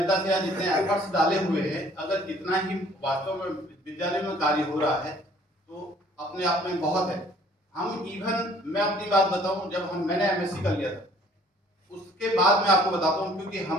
से या जितने एफर्ट्स डाले हुए हैं, अगर कितना ही वास्तव में विद्यालय में कार्य हो रहा है तो अपने आप में बहुत है। हम इवन मैं अपनी बात बताऊं, जब मैंने MSc कर लिया था, उसके बाद मैं आपको बताता हूं, क्योंकि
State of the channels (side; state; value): both; normal; correlation 0.57